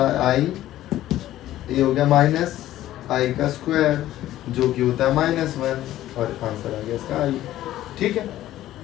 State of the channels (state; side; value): quieter; right; 13.9 dB